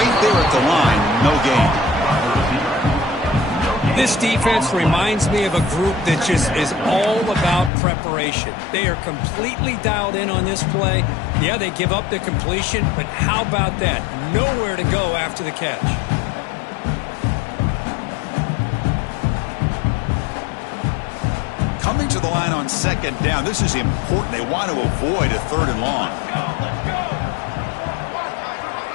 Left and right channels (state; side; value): drops out; right; at 7.7 s